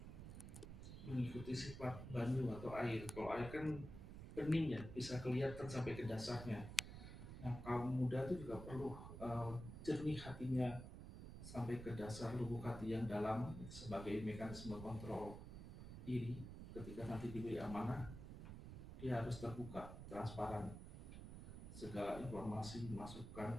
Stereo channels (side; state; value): right; noise; rumble, 9 dB below the sound